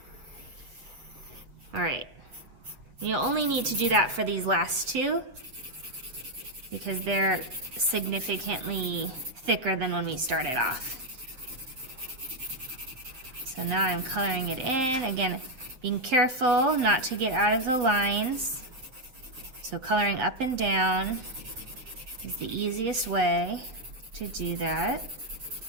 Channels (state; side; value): late; left; 8.0 ms